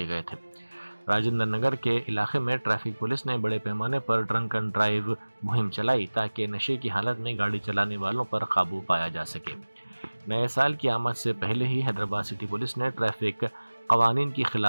گئے تھے۔ راجندر نگر کے علاقے میں ٹریفک پولیس نے بڑے پیمانے پر ڈرنک اینڈ ڈرائیو مہم چلائی تاکہ نشے کی حالت میں گاڑی چلانے والوں پر قابو پایا جا سکے۔ نئے سال کی آمد سے پہلے ہی حیدرآباد سٹی پولیس نے ٹریفک قوانین کی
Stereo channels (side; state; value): both; inverted; correlation -1.00